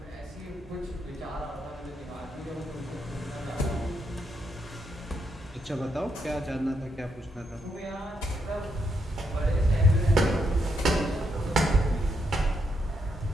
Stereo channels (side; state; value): both; normal; correlation 0.79